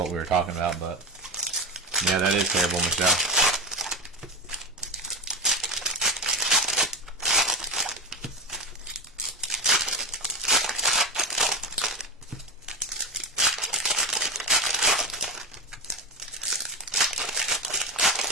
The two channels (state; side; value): normal; both; correlation 0.16